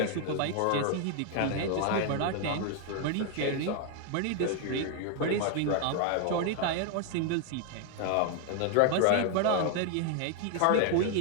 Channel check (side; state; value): both; different; correlation 0.00